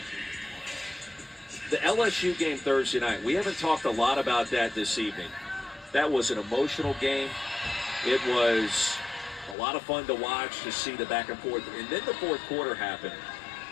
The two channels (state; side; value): drops out; right; at 9.6 s